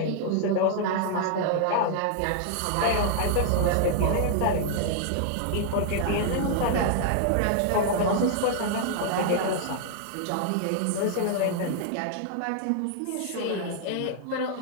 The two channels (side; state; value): both; different; correlation 0.00